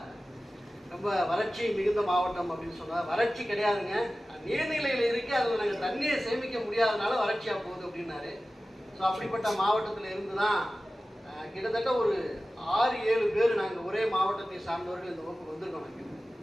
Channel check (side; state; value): both; normal; correlation 0.96